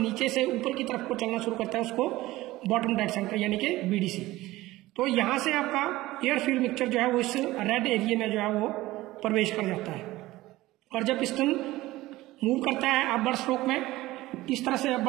से ऊपर की तरफ को चलना शुरू करता है उसको बॉटम डेड सेंटर यानी कि बीडीसी। तो यहाँ से आपका एयर फ्यूल मिक्सचर जो है वो इस रेड एरिया में जो है वो प्रवेश कर जाता है। और जब पिस्टन मूव करता है अपवर्ड स्ट्रोक में, इस तरह से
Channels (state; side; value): quieter; left; 17.7 dB